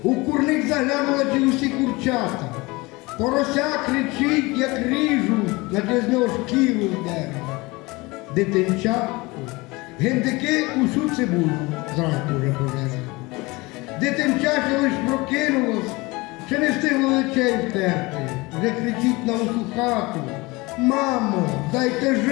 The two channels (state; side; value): quieter; right; 23.4 dB